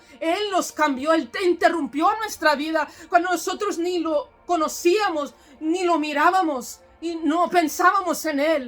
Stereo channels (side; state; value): both; identical; correlation 1.00